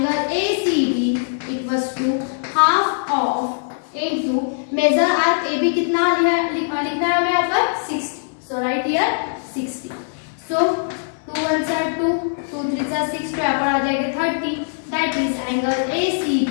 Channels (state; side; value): silent; right; 58 dB below the other